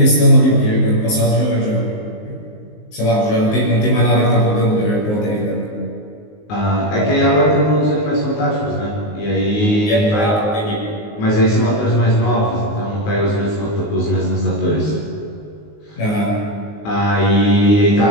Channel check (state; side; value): late; right; 19 ms